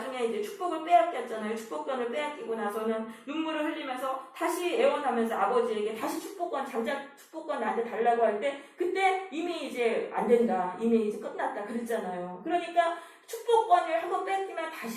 이제 축복을 빼앗겼잖아요. 축복권을 빼앗기고 나서는 눈물을 흘리면서 다시 애원하면서 아버지에게 다시 장자 축복권 나한테 달라고 할 때 그때 이미 이제 안 된다. 이미 이제 끝났다. 그랬잖아요. 그러니까 축복권을 한번 뺏기면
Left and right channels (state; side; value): identical; both; correlation 1.00